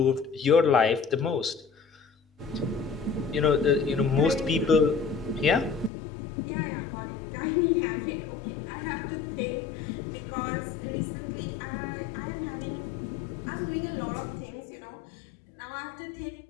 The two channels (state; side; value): drops out; right; at 5.9 s